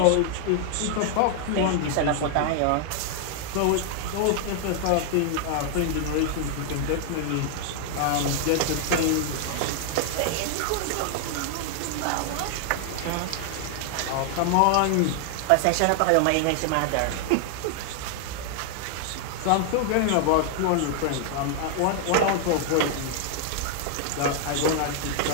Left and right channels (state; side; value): different; both; correlation 0.00